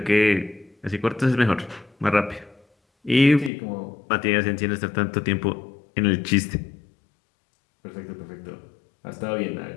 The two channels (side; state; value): right; drops out; at 3.5 s